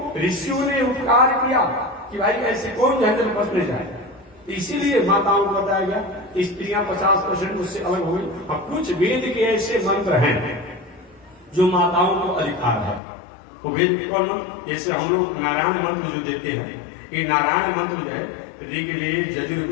ऋषियों ने उपकार किया कि भाई ऐसे कौन झंझट बचने जाए। इसीलिए माताओं को बताया गया, स्त्रियां 50% उससे अलग हो गई। अब कुछ वेद के ऐसे मंत्र हैं जो माताओं को अधिकार है। वो वेद कौन? जैसे हम लोग नारायण मंत्र जो देते हैं, ये नारायण मंत्र जो है ऋग्वेद,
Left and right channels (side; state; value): right; drops out; at 13.0 s